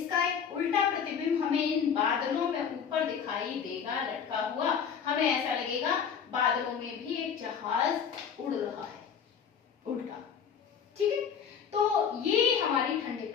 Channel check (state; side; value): quieter; right; 7.2 dB